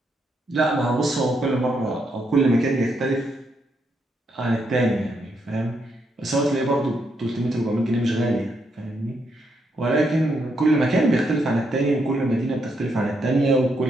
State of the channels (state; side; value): normal; both; correlation 0.78